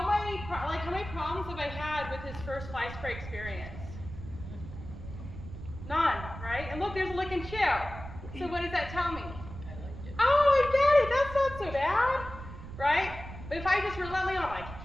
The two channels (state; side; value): noise; right; rumble, 11 dB below the sound